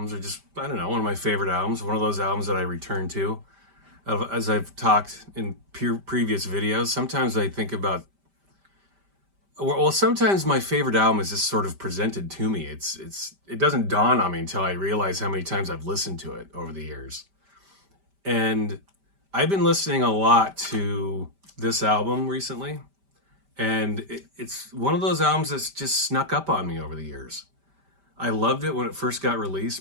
or just, I don't know, one of my favorite albums, one of those albums that I return to. As I've talked in previous videos, sometimes I think about, well, sometimes my favorite album is just sort of presented to me. It doesn't dawn on me until I realize how many times I've listened to it over the years. And I've been listening a lot to this album recently, and it's one of those albums that's just snuck up on me over the years. I loved it when it first got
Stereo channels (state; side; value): late; left; 5.1 ms